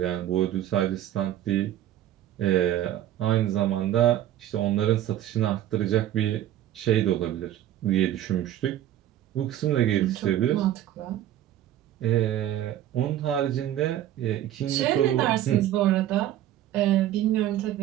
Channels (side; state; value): left; quieter; 12.3 dB